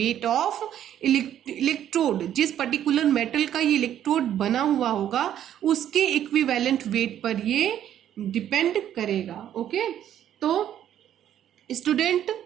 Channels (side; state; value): left; quieter; 10.8 dB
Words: ऑफ इलेक्ट्रोड. जिस पर्टिकुलर मेटल का ये इलेक्ट्रोड बना हुआ होगा उसके इक्विवेलेंट वेट पर ये डिपेंड करेगा. ओके, तो स्टूडेंट